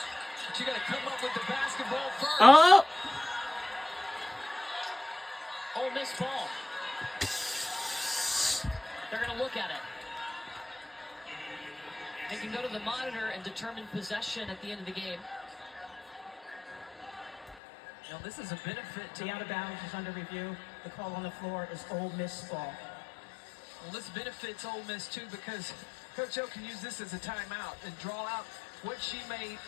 But you got to come up with the basketball first. Oh! Ole Miss ball. They're going to look at it. They can go to the monitor and determine possession at the end of the game. Now, this is a benefit to The out of bounds is under review. The call on the floor is Ole Miss ball. Well, this benefits Ole Miss, too, because Coach O can use this as a timeout and draw out what she may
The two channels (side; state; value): right; drops out; at 17.6 s